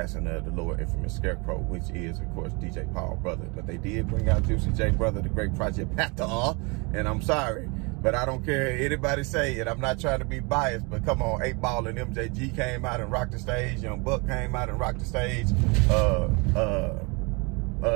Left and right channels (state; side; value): quieter; left; 29.7 dB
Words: of the Lord Infamous Scarecrow, which is, of course, DJ Paul brother. But they did bring out Juicy J brother, the great Project Pata, and I'm sorry, but I don't care anybody say it. I'm not trying to be biased, but come on, 8 Ball and MJG came out and rocked the stage. Young Buck came out and rocked the stage.